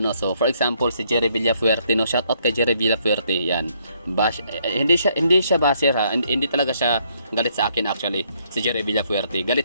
So for example, si Jerry Villafuerte, no, shout out kay Jerry Villafuerte. Yan. Hindi siya basher ha. Hindi talaga siya galit sa akin actually. Si Jerry Villafuerte. Galit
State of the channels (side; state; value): both; inverted; correlation -0.70